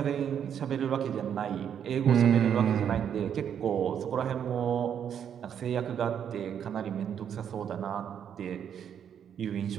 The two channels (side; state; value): left; quieter; 8.6 dB